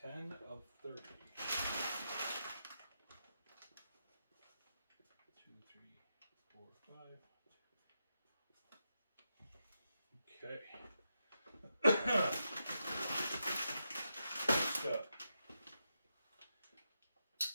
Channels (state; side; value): inverted; both; correlation -0.86